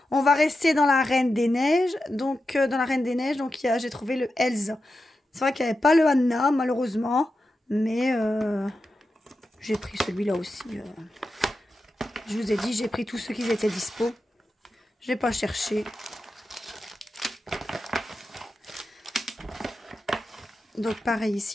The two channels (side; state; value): both; normal; correlation 0.90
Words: On va rester dans la Reine des Neiges. Donc dans la Reine des Neiges, donc j'ai trouvé le Elsa. C'est vrai qu'il n'y avait pas le Anna malheureusement. Mais j'ai pris celui-là aussi. Je vous ai dit, j'ai pris tous ceux qui étaient dispo. Je n'ai pas cherché. Donc pareil